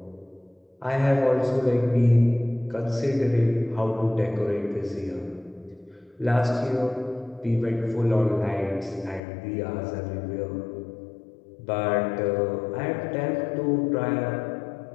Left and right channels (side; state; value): right; drops out; at 9.2 s